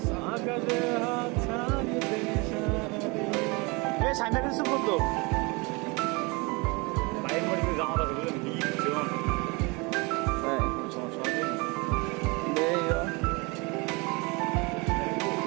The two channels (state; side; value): quieter; left; 27.7 dB